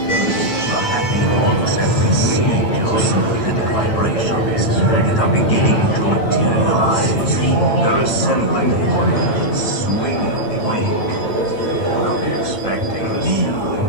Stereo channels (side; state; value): right; late; 9.0 ms